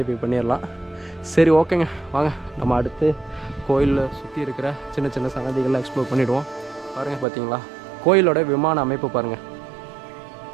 பண்ணிடலாம். சரி, ஓகேங்க, வாங்க நம்ம அடுத்து கோயிலில் சுற்றி இருக்கிற சின்ன சின்ன சன்னதிகளை எக்ஸ்ப்ளோர் பண்ணிவிடுவோம். பாருங்கள், பார்த்தீங்களா கோயிலோட விமான அமைப்பு பாருங்கள்,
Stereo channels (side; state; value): left; drops out; at 7.2 s